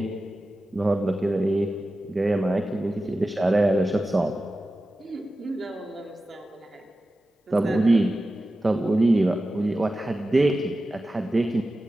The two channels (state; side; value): normal; both; correlation 0.94